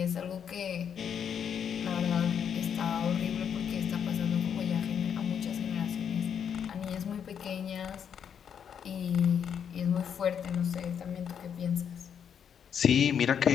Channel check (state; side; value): quieter; right; 8.0 dB